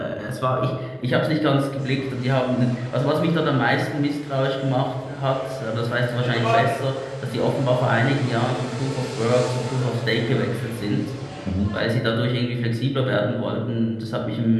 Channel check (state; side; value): identical; both; correlation 1.00